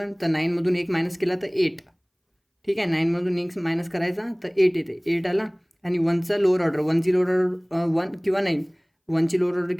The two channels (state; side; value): identical; both; correlation 1.00